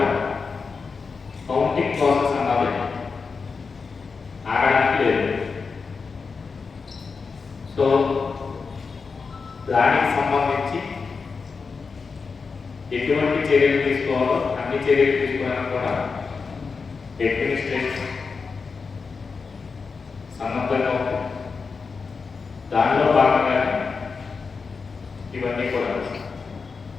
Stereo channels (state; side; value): quieter; right; 4.9 dB